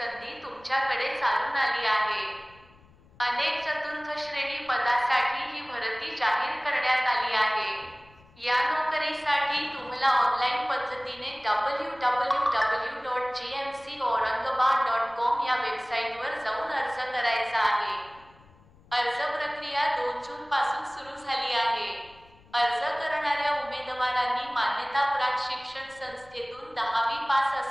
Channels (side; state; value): left; noise; rumble, 27 dB below the sound